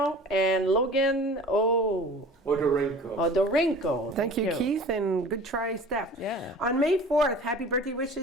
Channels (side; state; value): both; normal; correlation 0.43